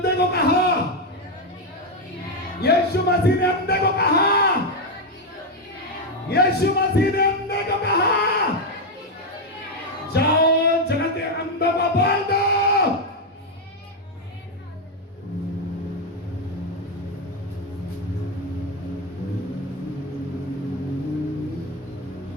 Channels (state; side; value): normal; both; correlation 0.05